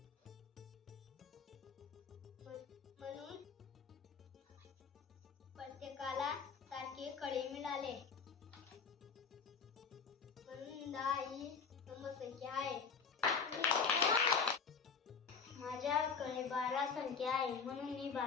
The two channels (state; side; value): quieter; right; 5.7 dB